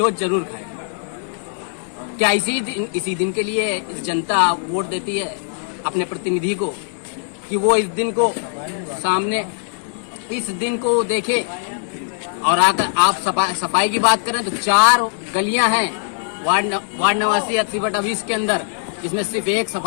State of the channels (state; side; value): silent; right; digital silence